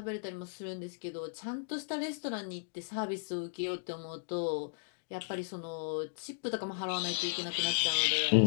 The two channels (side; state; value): right; silent; digital silence